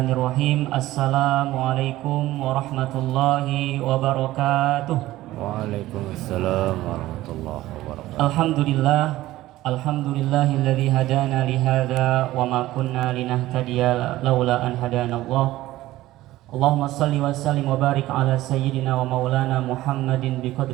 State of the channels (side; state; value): left; quieter; 16.2 dB